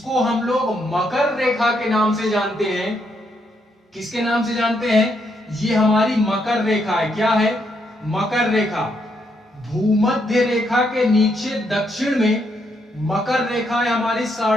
हम लोग मकर रेखा के नाम से जानते हैं। किसके नाम से जानते हैं? ये हमारी मकर रेखा है। क्या है? मकर रेखा। भूमध्य रेखा के नीचे दक्षिण में मकर रेखा है हमारी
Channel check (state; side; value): normal; both; correlation 0.77